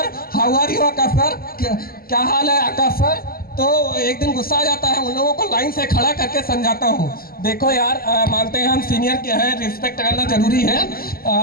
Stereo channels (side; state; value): right; late; 0.43 ms